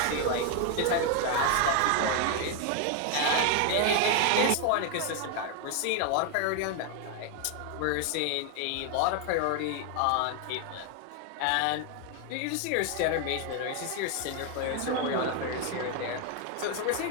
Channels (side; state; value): both; different; correlation 0.01